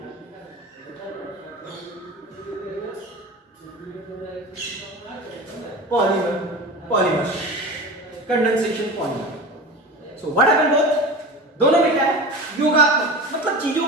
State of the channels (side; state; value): both; normal; correlation 0.31